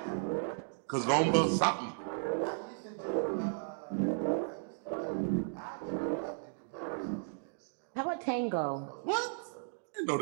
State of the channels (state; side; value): silent; left; digital silence